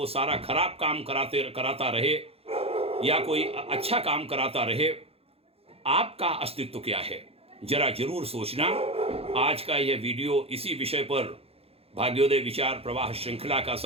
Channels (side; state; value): left; late; 0.29 ms